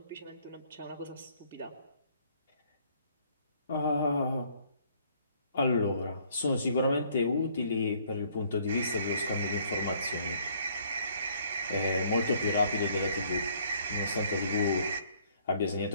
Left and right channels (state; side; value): inverted; both; correlation -0.62